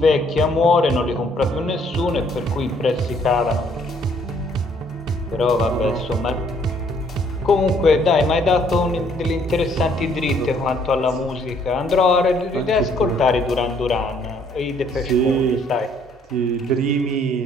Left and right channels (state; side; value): normal; both; correlation 0.64